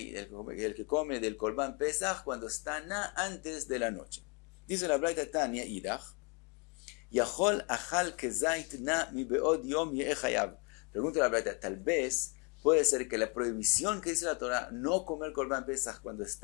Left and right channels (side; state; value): right; quieter; 33.2 dB